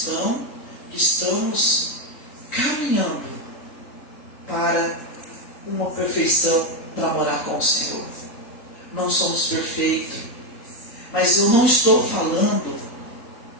que estamos caminhando para uma perfeição, para morar com o Senhor. Não somos perfeitos. Mas eu não estou falando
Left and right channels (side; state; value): right; late; 3.7 ms